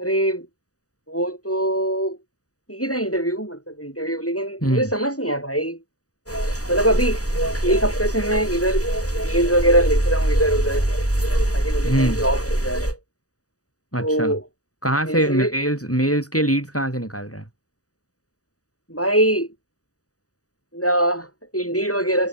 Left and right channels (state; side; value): late; right; 0.66 ms